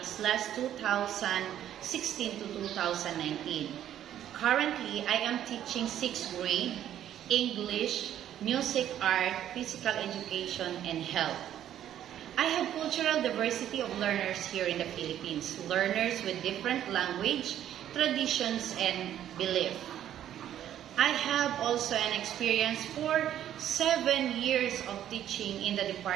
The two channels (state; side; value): quieter; left; 11.1 dB